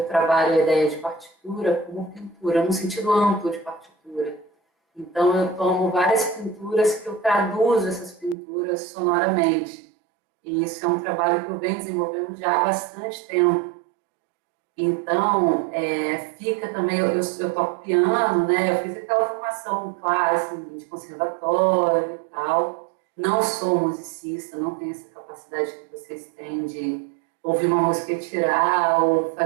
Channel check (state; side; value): drops out; left; at 8.3 s